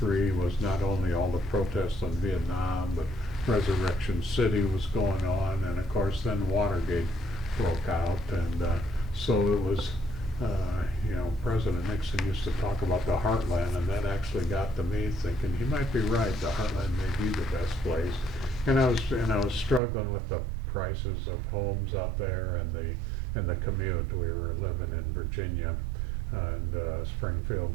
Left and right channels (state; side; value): drops out; left; at 19.8 s